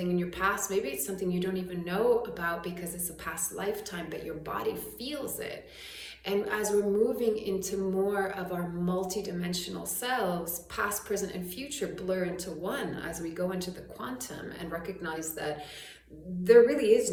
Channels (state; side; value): identical; both; correlation 1.00